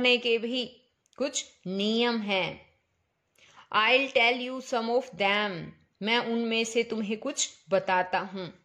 के भी कुछ नियम हैं। I'll tell you some of them. मैं उनमें से तुम्हें कुछ बताता हूं।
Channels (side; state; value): both; identical; correlation 1.00